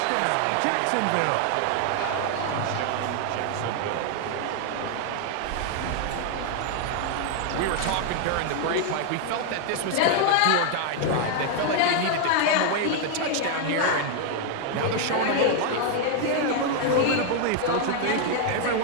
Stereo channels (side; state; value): both; different; correlation 0.00